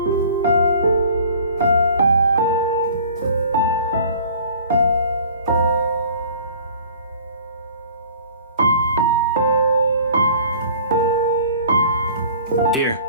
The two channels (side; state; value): both; inverted; correlation -0.48